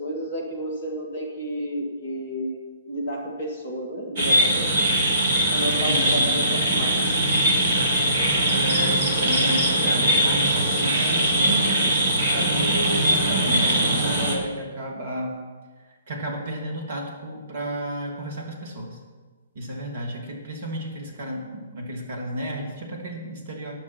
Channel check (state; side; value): inverted; both; correlation -0.55